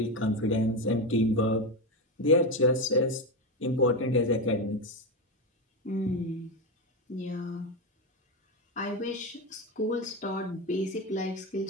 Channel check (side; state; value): both; normal; correlation 0.13